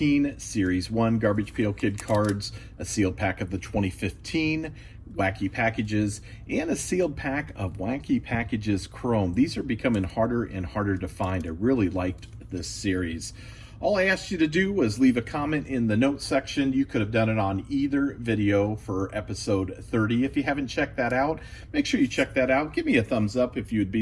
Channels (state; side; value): identical; both; correlation 1.00